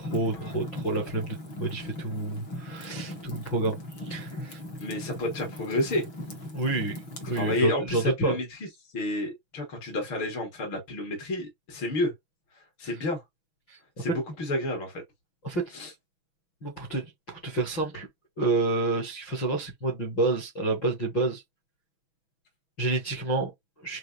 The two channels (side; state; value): right; late; 6.1 ms